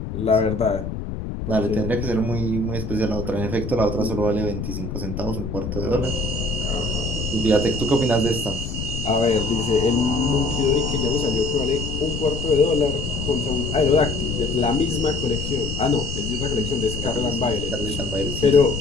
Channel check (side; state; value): left; noise; rumble, 6 dB below the sound